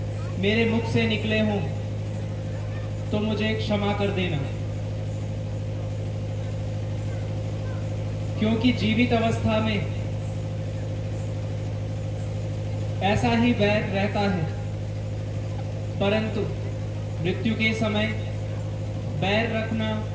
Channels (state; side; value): identical; both; correlation 1.00